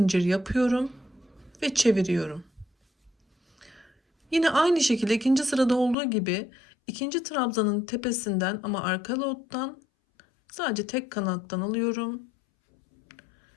yapıyorum ve çeviriyorum. Yine aynı şekilde ikinci sırada olduğu gibi ikinci trabzanın tepesinden ama arka lottan sadece tek kanattan alıyorum.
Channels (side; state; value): right; drops out; at 6.0 s